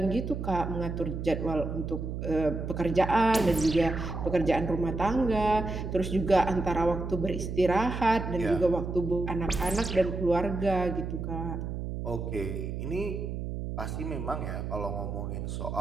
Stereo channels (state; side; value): noise; right; hum, 5 dB below the sound